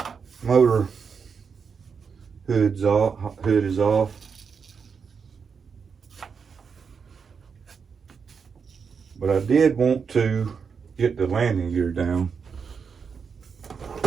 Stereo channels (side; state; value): left; quieter; 6.0 dB